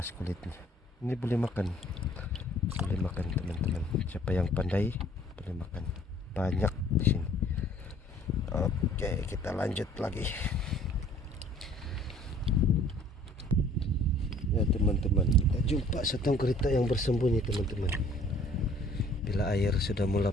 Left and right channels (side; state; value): both; normal; correlation 0.55